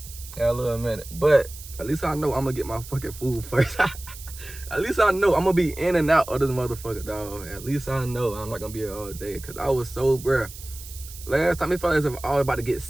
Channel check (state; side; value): noise; right; hiss, 15 dB below the sound